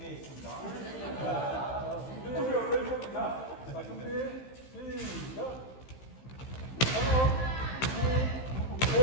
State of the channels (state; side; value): late; right; 15 ms